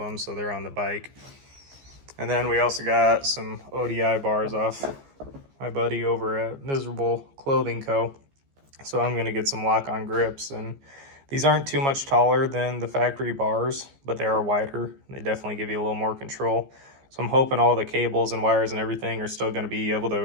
so they're on the bike. And then we also got some ODI bars off my buddy over at Miserable Clothing Co. So I'm gonna get some lock-on grips, and these aren't too much taller than the factory bars, but they are wider. They definitely give you a little more control. So I'm hoping all the cables and wires and everything are still gonna be able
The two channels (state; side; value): late; left; 15 ms